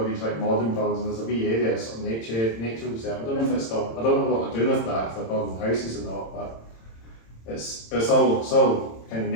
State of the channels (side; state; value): right; late; 26 ms